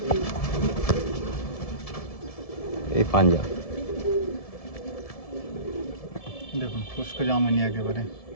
এই পাঞ্জা। দেখুন খুশকো জামুনি একেবারে,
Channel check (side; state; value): right; late; 1.7 ms